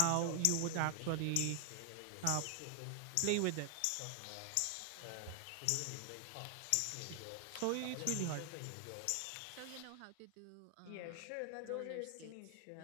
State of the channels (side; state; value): both; different; correlation 0.00